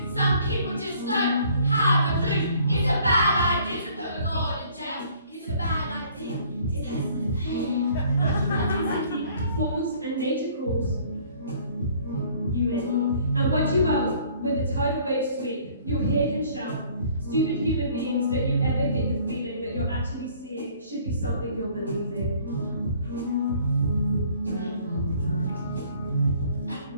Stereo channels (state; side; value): inverted; both; correlation -0.57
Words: something you're believing.